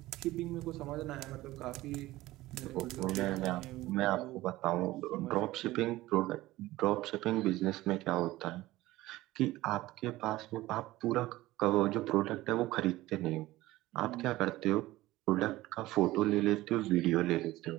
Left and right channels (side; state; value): left; quieter; 17.4 dB